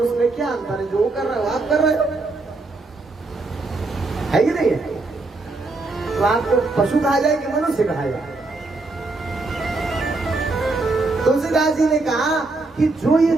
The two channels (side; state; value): left; quieter; 3.3 dB